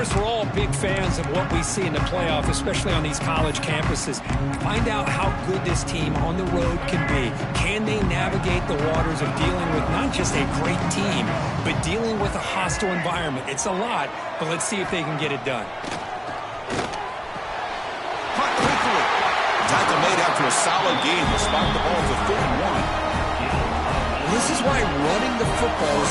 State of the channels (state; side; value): identical; both; correlation 1.00